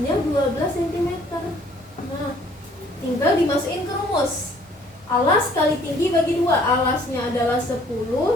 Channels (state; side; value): normal; both; correlation 0.59